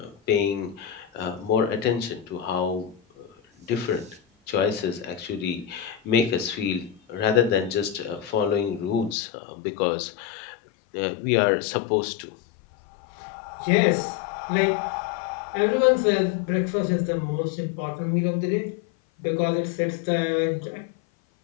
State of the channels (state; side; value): drops out; right; at 9.2 s